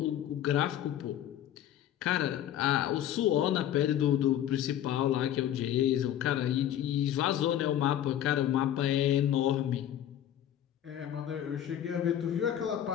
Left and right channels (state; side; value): quieter; right; 11.1 dB